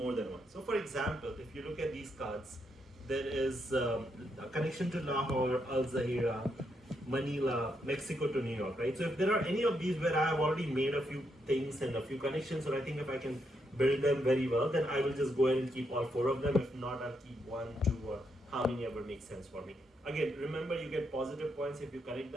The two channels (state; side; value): normal; both; correlation 0.79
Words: than one. So for example, if you look at these cards, there is a connection to Lahore, Al Zahira, Manila, Mexico to New York, right? So if there are any of these where I have already made a few things and a few connections, or I think if I can build them very well, then I will just go ahead and keep all 4 of them. If not, I'll keep 1, 2, or how many ever makes sense for me. Again, remember you get positive points if you connect